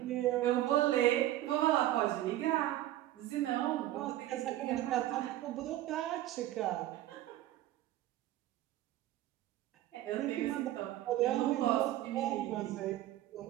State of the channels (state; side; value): quieter; left; 14.3 dB